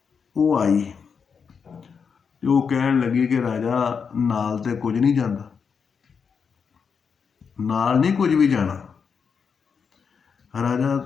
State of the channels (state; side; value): quieter; right; 6.1 dB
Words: ਉਹ ਆਈ ਤੇ ਉਹ ਕਹਿਣ ਲੱਗੀ ਕਿ ਰਾਜਾ ਨਾਲ ਤੇ ਕੁਝ ਨਹੀਂ ਜਾਂਦਾ, ਨਾਲ ਨਹੀਂ ਕੁਝ ਵੀ ਜਾਣਾ।